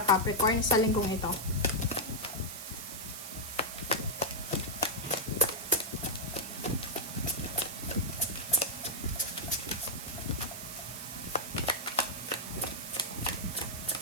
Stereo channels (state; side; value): noise; right; hiss, 8 dB below the sound